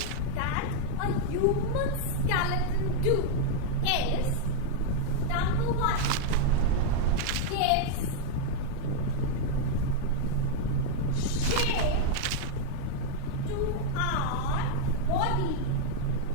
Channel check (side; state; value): both; different; correlation -0.01